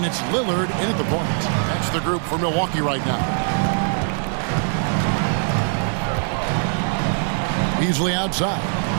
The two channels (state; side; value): silent; left; digital silence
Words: it's Lillard in at the point. That's the group for Milwaukee right now. Beasley outside.